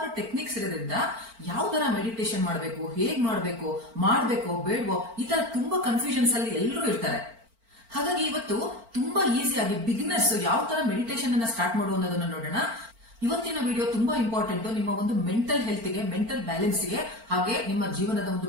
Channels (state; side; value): late; left; 4.4 ms